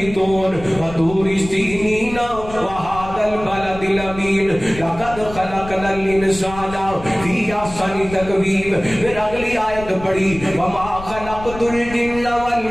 وطور سینین وهذا البلد الامین لقد خلقنا الانسان فی احسن تقویم. پھر اگلی آیت پڑھی وما خلقت الجن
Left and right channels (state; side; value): noise; left; rumble, 13 dB below the sound